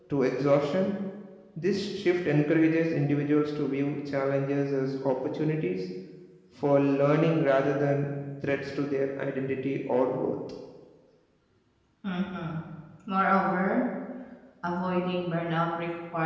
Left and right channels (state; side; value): identical; both; correlation 1.00